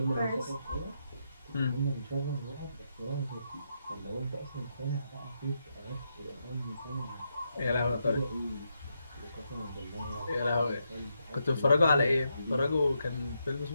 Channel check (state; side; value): inverted; both; correlation -0.82